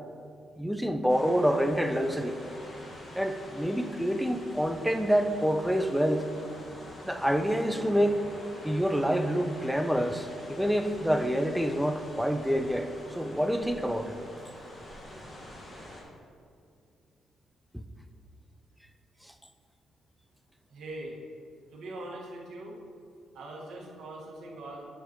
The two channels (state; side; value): normal; both; correlation 0.93